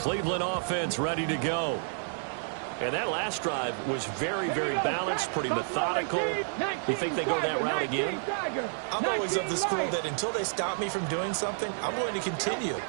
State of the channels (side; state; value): left; silent; digital silence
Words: offense ready to go. And that last drive was very, very balanced, pretty methodical. You think they go that route again? I'm always of the school that until they stop me from doing something, I'm going to continue.